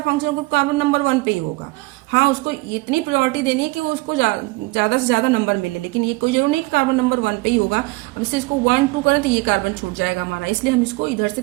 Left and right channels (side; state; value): left; quieter; 23.6 dB